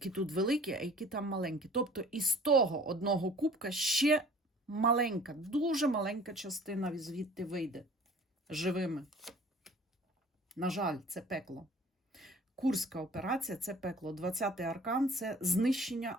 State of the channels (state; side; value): normal; both; correlation 0.49